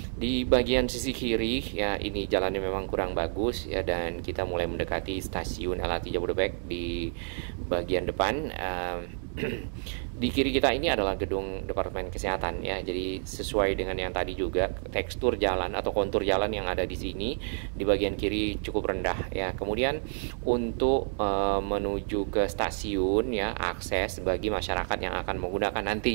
Di bagian sisi kiri ya ini jalannya memang kurang bagus ya, dan kita mulai mendekati stasiun LRT Jabodebek di bagian depan. Di kiri kita ini adalah gedung Departemen Kesehatan ya. Jadi sesuai dengan yang tadi juga, tekstur jalan atau kontur jalan yang ada di sini di bagian kiri cukup rendah ya. Kemudian untuk menuju ke stasiun ya, akses bagi masyarakat yang akan menggunakan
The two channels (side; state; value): left; silent; 58 dB below the other